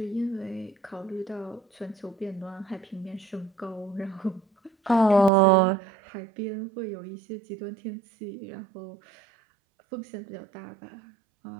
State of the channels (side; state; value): left; drops out; at 5.3 s